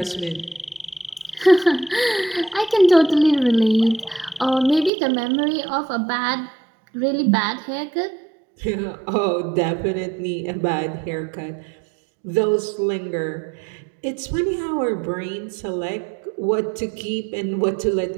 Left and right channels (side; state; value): left; drops out; at 4.9 s